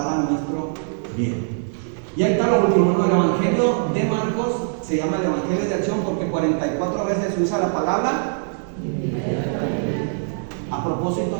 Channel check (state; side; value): silent; left; 64 dB below the other